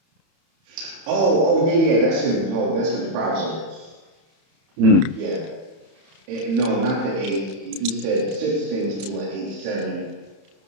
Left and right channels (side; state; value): left; late; 31 ms